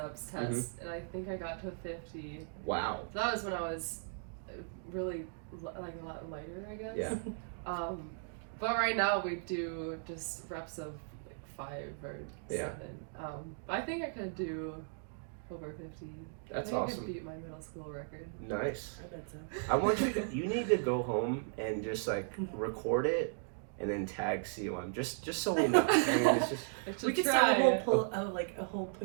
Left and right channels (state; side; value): silent; left; digital silence